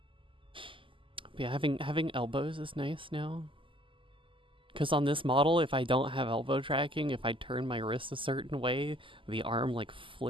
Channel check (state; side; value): late; left; 0.25 ms